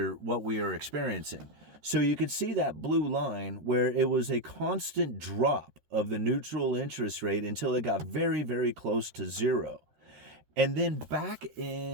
are experiencing. So you can see that blue line where it was a constant drop of the neutral interest rate until it got very, very close to zero. And then back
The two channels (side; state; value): left; late; 13 ms